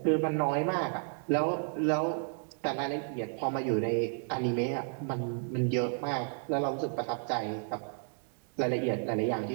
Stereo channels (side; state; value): left; silent; 56 dB below the other